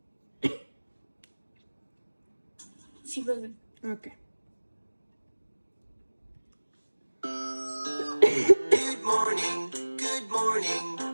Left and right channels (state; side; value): inverted; both; correlation -1.00